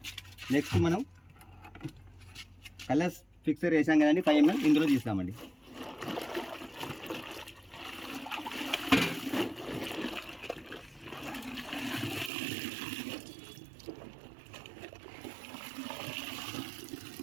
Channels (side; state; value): left; drops out; at 12.3 s